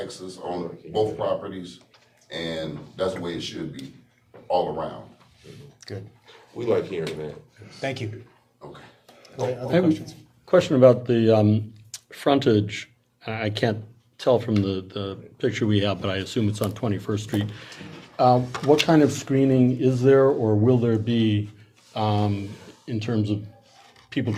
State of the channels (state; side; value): identical; both; correlation 1.00